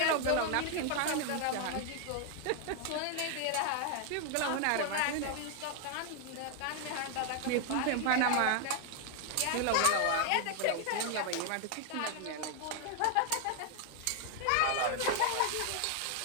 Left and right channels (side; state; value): both; different; correlation 0.00